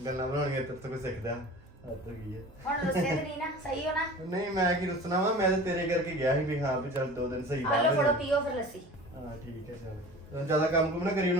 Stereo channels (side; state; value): both; normal; correlation 0.39